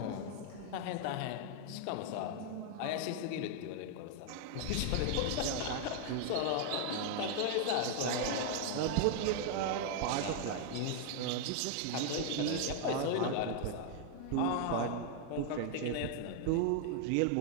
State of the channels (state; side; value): different; both; correlation 0.00